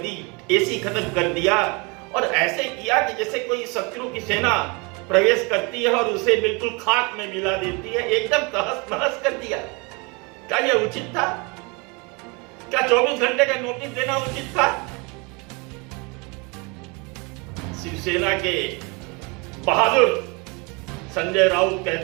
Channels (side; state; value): left; quieter; 29.4 dB